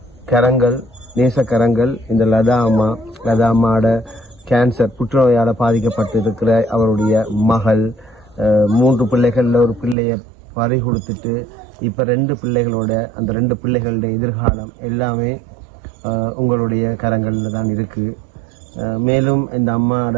கரங்கள், நேசக்கரங்கள் இந்த லதா அம்மாவோட கேன்சர் புற்றுநோயால பாதிக்கப்பட்டு இருக்கிற அவருடைய மகள், 3 பிள்ளைகள்ல ஒரு பிள்ளைய பறி கொடுத்துட்டு இப்ப 2 பிள்ளைகளோட அந்த 2 பிள்ளைகளுடைய எதிர்காலம் எல்லாமே உங்களுடைய கரங்கள்ல தான் இருக்கு. மேலும் இந்த அம்மாவோட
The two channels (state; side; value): drops out; left; at 10.0 s